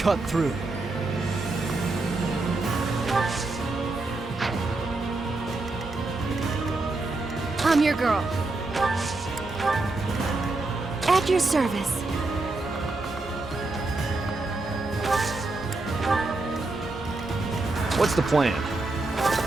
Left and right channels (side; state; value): left; quieter; 3.2 dB